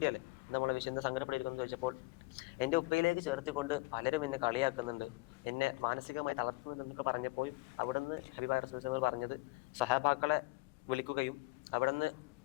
എന്താ മോളെ വിഷയം, എന്താ സങ്കടപ്പെട്ടിരിക്കുന്നു ചോദിച്ചപ്പോൾ, എന്റെ ഉപ്പയിലേക്ക് ചേർത്തിക്കൊണ്ട് പലരും എന്നെ കളിയാക്കുന്നുണ്ട്, എന്നെ മാനസികമായി തളർത്തുന്നുണ്ട് എന്നൊക്കെ പറഞ്ഞപ്പോൾ അവിടെ നിന്ന് ഹബീബായ റസൂൽ പറഞ്ഞത് സഹാബാക്കളെ വിളിക്കുകയും അവിടെ നിന്ന്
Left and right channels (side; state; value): right; quieter; 23.2 dB